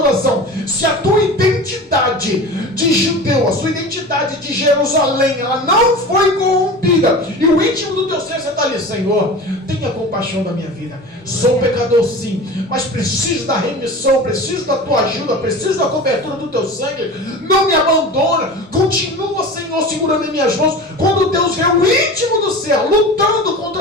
Se a tua identidade de judeu, a sua identidade de Jerusalém, ela não foi corrompida, e o íntimo do teu ser, você está ali: Senhor, tenha compaixão da minha vida. Sou pecador sim, mas preciso da remissão, preciso da tua ajuda, preciso da cobertura do teu sangue. Não me abandona. Continua, Senhor, segurando em minhas mãos. Quando Deus vê o íntimo do céu lutando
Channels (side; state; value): both; normal; correlation 0.33